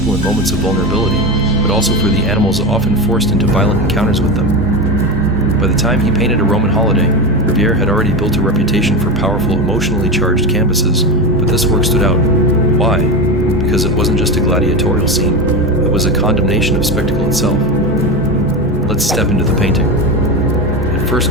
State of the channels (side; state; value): both; normal; correlation 0.19